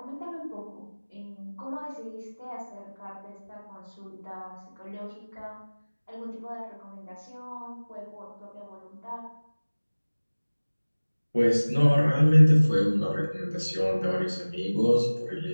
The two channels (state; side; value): inverted; both; correlation -1.00